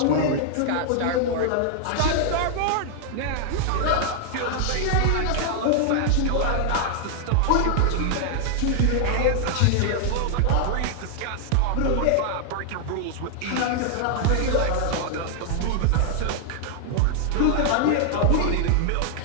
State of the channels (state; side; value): different; both; correlation -0.01